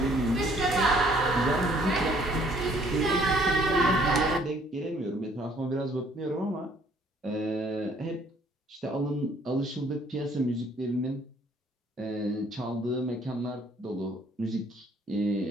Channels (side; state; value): both; normal; correlation 0.61